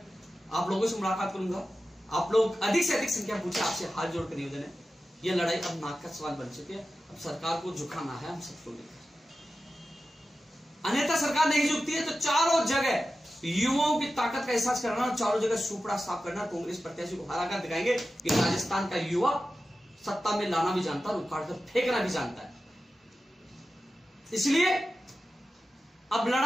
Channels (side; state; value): both; normal; correlation 0.93